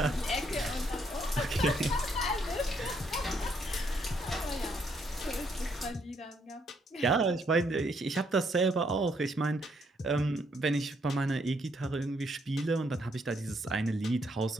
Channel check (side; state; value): both; normal; correlation 0.72